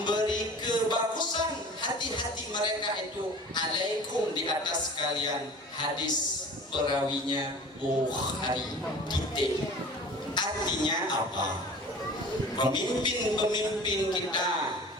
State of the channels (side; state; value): both; normal; correlation 0.42